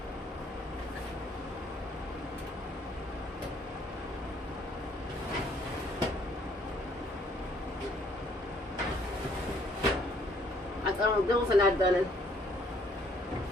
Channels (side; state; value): both; normal; correlation 0.63